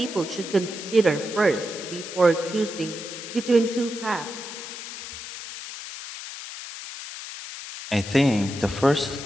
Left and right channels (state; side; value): noise; left; hiss, 10 dB below the sound